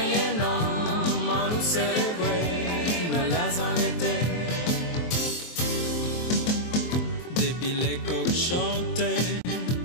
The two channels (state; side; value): late; right; 23 ms